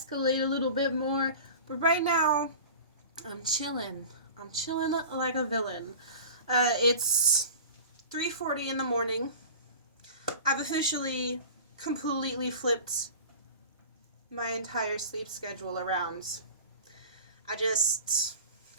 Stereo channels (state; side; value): inverted; both; correlation -0.36